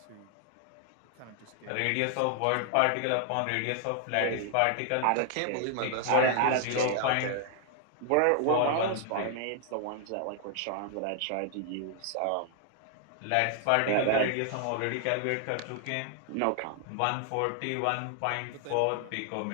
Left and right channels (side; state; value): both; different; correlation 0.00